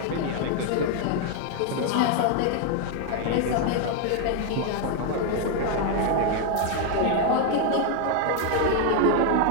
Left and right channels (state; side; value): different; both; correlation 0.00